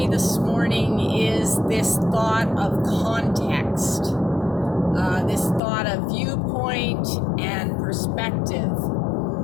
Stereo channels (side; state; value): right; drops out; at 5.6 s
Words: this morning is this thought of context, this thought of viewpoint and perspective.